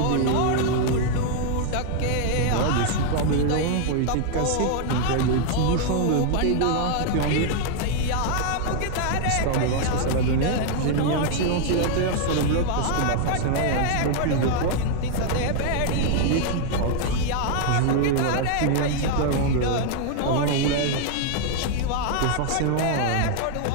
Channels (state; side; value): different; both; correlation 0.00